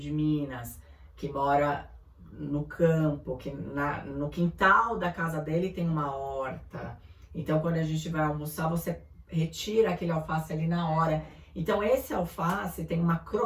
Minas, que mora no campo, que no quintal da casa dele tem uma horta. Então, quando a gente vai almoçar, você retira aquele alface ali na hora. Então, esse alface tem uma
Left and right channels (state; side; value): identical; both; correlation 1.00